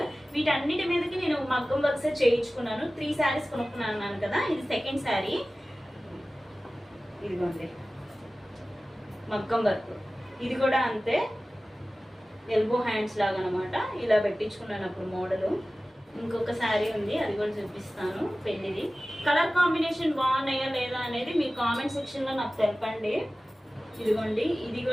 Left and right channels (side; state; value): both; normal; correlation 0.96